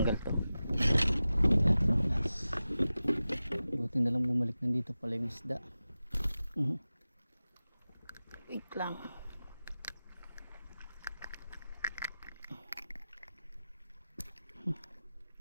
to. Buti na lang bumalik nandito pala yung isda. Wait lang.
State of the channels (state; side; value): inverted; both; correlation -0.95